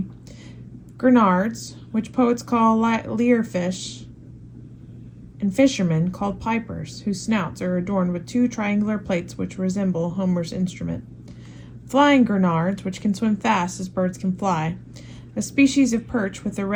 grenards, which poets call lyrefish, and fishermen called pipers, whose snouts are adorned with 2 triangular plates which resemble Homer's instrument, flying grenards, which can swim fast as birds can fly, a species of perch with a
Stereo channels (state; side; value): identical; both; correlation 1.00